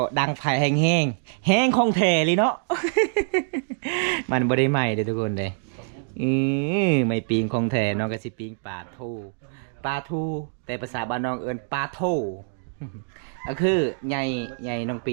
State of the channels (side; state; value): left; silent; digital silence